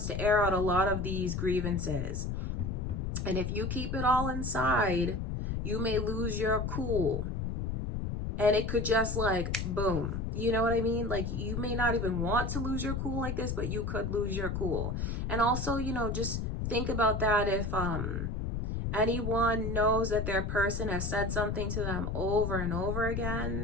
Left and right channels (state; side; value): noise; left; rumble, 2 dB below the sound